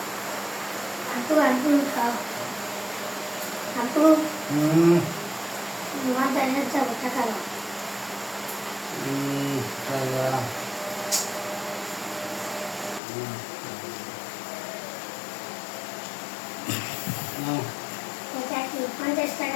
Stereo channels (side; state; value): right; drops out; at 13.0 s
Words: আপু আপু খাও আপু বাজারে যাবো টাকা দাও। এটা কি 50